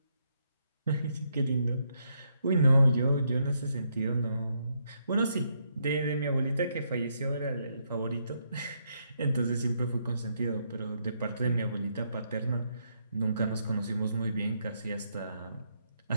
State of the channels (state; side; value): inverted; both; correlation -0.77